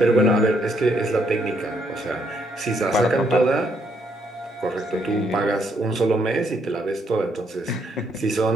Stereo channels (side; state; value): both; normal; correlation 0.73